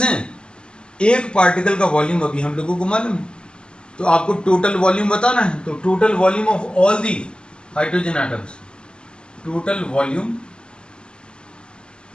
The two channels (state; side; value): late; right; 0.049 ms